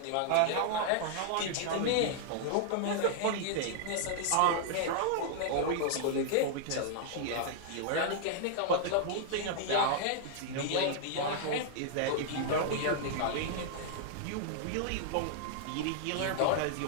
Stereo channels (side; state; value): both; different; correlation -0.01